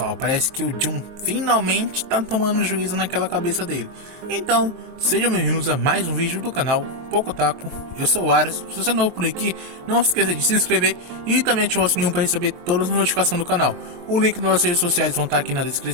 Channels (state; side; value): late; left; 23 ms